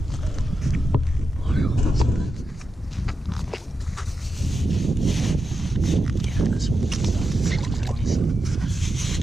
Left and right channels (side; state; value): both; normal; correlation 0.89